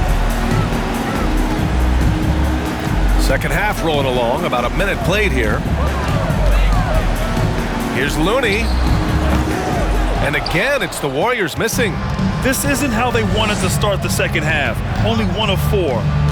Second half rolling along, about a minute played here. Here's Looney. And again, it's the Warriors missing. This isn't how they wanted to start the second half. Only 1 of 4.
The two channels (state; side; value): identical; both; correlation 1.00